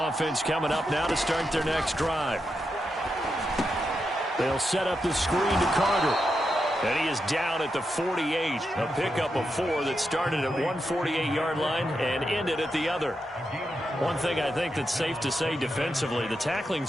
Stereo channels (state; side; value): normal; both; correlation 0.86